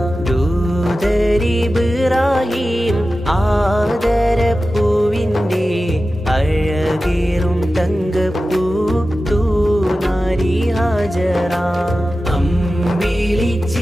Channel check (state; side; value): normal; both; correlation 0.94